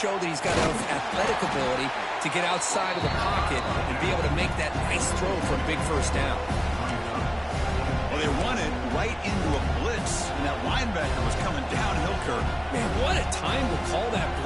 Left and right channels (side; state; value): both; identical; correlation 1.00